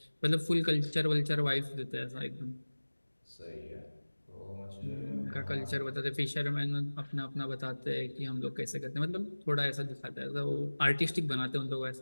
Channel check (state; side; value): inverted; both; correlation -1.00